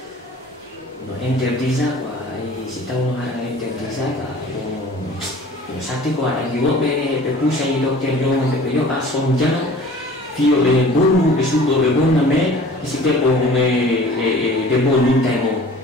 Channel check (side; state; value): both; normal; correlation 0.45